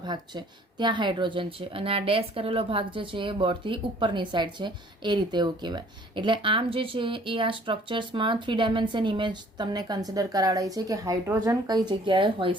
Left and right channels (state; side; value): normal; both; correlation 0.56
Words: ભાગ છે, ત્યાં હાઇડ્રોજન છે અને આ ડેશ કરેલો ભાગ જે છે એ બોર્ડથી ઉપરની સાઈડ છે, એ રીતે એવું કહેવાય. એટલે આમ જે છે એ આ સ્ટ્રક્ચર્સમાં 3 ડાયમેન્શન ઇમેજ તમને કન્સિડર કરાવડાય છે કે હાઇડ્રોજન કઈ જગ્યાએ હોઈ